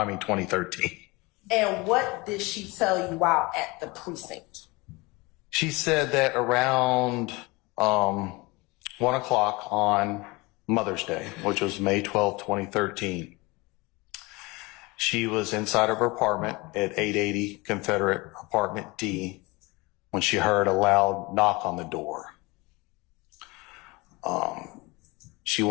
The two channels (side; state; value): right; quieter; 24.4 dB